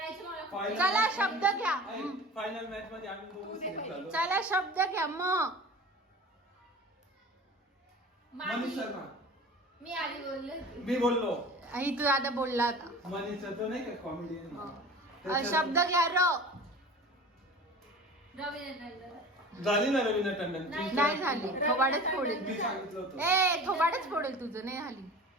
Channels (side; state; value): both; normal; correlation 0.38